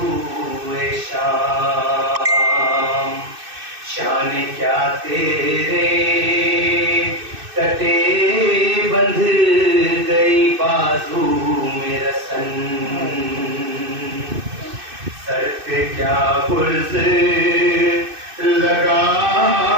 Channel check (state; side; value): late; left; 2.6 ms